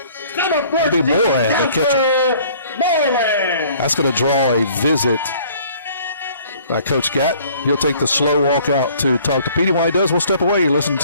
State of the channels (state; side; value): inverted; both; correlation -0.55